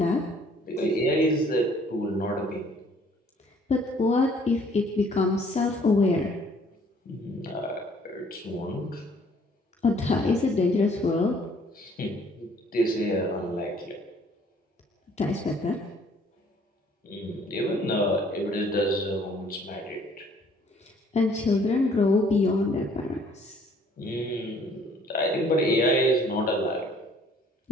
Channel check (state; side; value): normal; both; correlation 0.59